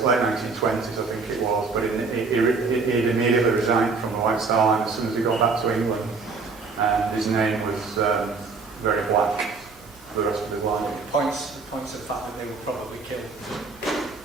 1920s, I think it was. But he'd immediately resigned from the White Star Line as soon as he got back to England. And his name was very black for the rest of his life. It points to the fact that they were probably killed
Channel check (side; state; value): left; quieter; 4.4 dB